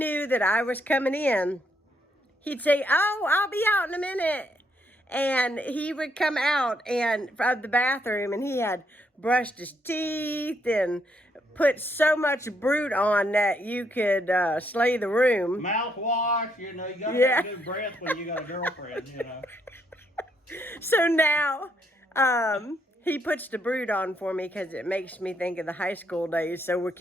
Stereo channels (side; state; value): both; normal; correlation 0.74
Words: that I was coming in, he'd say, "Oh, I'll be out in a minute." And he would come out and from the bathroom and he had brushed his teeth and put so much brute on that you could slay the room. Mouthwash, you gotta have good breath when you got a girlfriend, So now he puts the brute on for me because it makes me think of the high school days. So we're